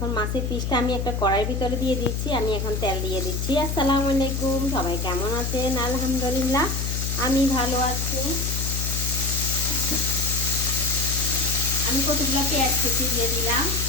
মাছের পিসটা আমি একটা কড়াইয়ের ভিতরে দিয়ে দিচ্ছি। আমি এখন তেল দিয়ে দিচ্ছি। আসসালামু আলাইকুম, সবাই কেমন আছেন? আলহামদুলিল্লাহ আমি ভালো আছি। আমি কতগুলো পেঁয়াজ কুচি দিয়ে দিলাম।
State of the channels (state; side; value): noise; left; hum, 1 dB below the sound